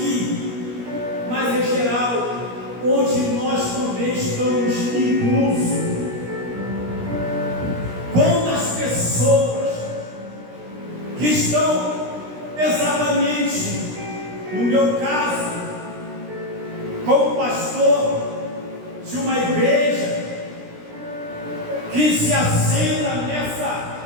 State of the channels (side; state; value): left; late; 17 ms